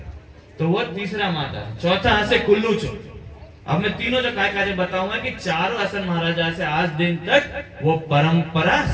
तो वो तीसरा माता। चौथा आसे कुल्लू चो। अब मैं तीनों जो काय काजे बताऊंगा कि चारों असल महाराजा से आज दिन तक वो परंपरा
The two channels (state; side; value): identical; both; correlation 1.00